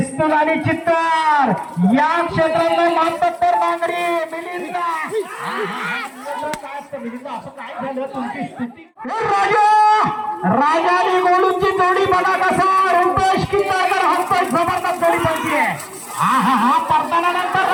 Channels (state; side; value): identical; both; correlation 1.00